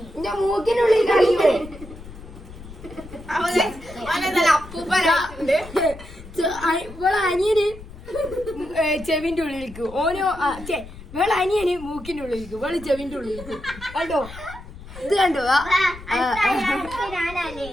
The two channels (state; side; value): noise; left; rumble, 15 dB below the sound